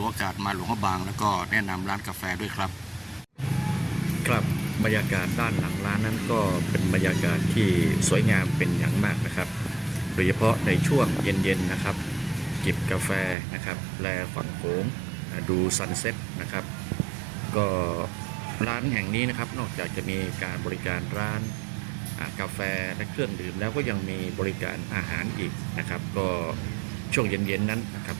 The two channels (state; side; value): drops out; left; at 13.4 s